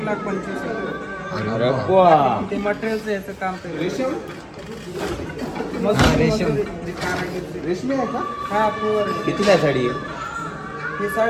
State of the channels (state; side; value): identical; both; correlation 1.00